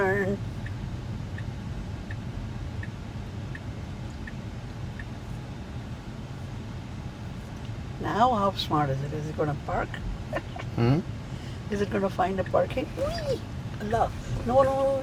Now how smart is it? Is it going to park? Hmm? Is it going to find a parking? Whee! Allah. No, no, no,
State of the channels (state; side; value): identical; both; correlation 1.00